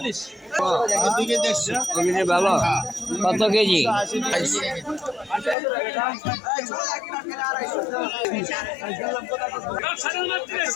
ভালো কত কেজি?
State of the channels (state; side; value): drops out; right; at 5.6 s